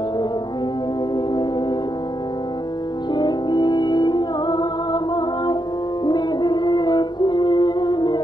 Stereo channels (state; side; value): late; right; 0.21 ms